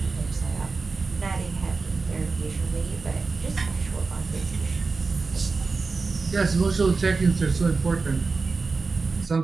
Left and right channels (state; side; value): quieter; left; 4.2 dB